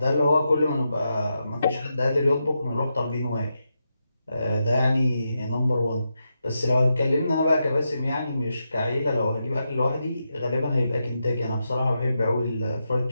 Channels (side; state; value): both; inverted; correlation -0.86